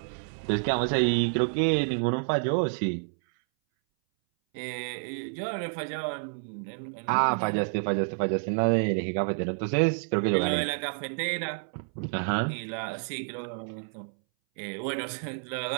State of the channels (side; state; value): left; silent; 59 dB below the other